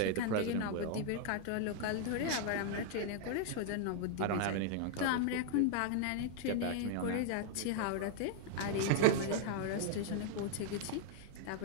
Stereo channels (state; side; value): different; both; correlation 0.00